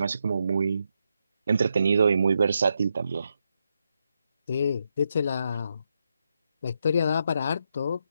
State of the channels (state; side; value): inverted; both; correlation -0.82